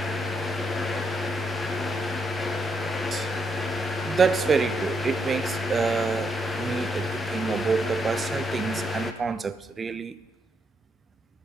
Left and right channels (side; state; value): both; normal; correlation 0.79